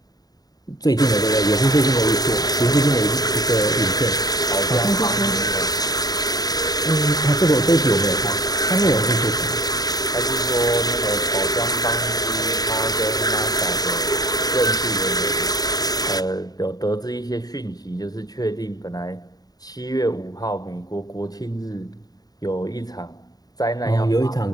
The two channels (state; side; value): late; right; 0.18 ms